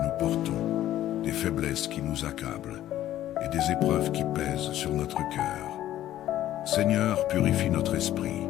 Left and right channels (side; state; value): right; quieter; 13.1 dB